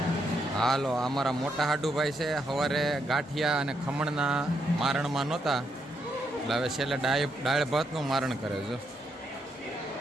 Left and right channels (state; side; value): normal; both; correlation 0.78